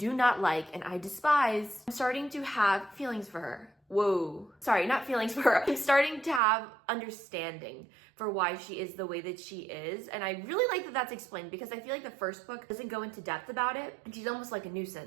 not like and I despise, I'm starting to have feelings for her. Whoa. Sorry, not feelings for her. I'm starting to have understanding for why she is the way that she is. And I really like that that's explained because I feel like the first book doesn't go into depth about it. And she's almost like a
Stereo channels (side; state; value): left; drops out; at 6.4 s